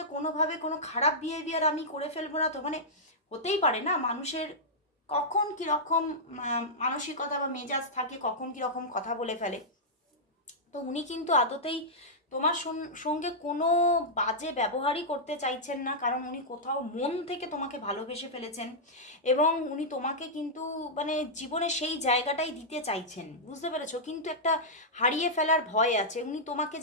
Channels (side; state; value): both; normal; correlation -0.10